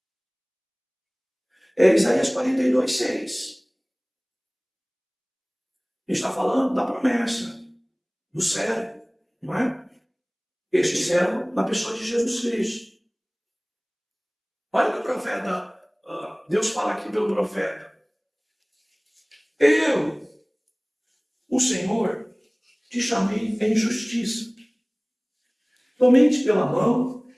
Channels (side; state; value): both; identical; correlation 1.00